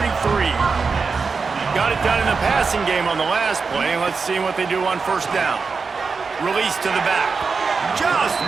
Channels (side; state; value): left; quieter; 4.8 dB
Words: Got it done in the passing game on the last play. Let's see what they do on 1st down. Release to the back. Just